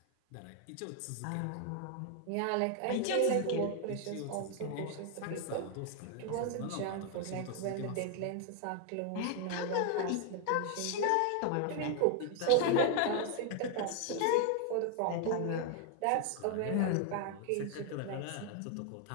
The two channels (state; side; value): different; both; correlation 0.00